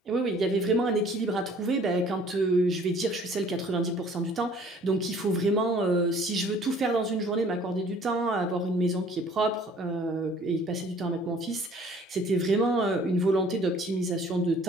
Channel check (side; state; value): both; normal; correlation 0.54